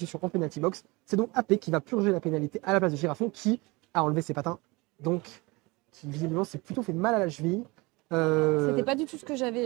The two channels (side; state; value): left; quieter; 24.6 dB